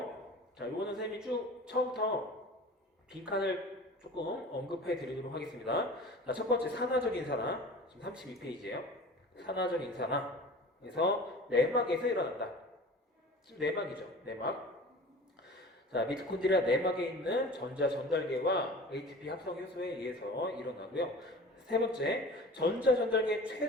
자, 이거는 선생님이 쭉 처음부터 빈칸을 조금 언급해 드리도록 하겠습니다. 자, 첫 번째 산화적 인산화. 지금 32페이지예요. 산화적 인산화에서 내막에서 일어난다. 지금 내막이죠. 내막. 자, 미토콘드리아 내막에 있는 전자 전달계와 ATP 합성 효소에 의해서 일어나고요. 세 번째, 전자 전달계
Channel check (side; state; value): both; normal; correlation 0.40